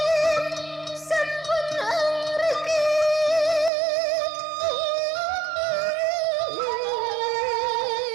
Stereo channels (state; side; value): drops out; left; at 3.7 s